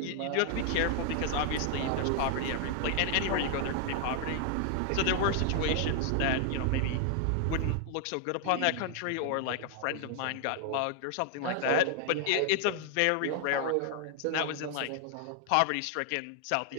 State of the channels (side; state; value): both; different; correlation 0.00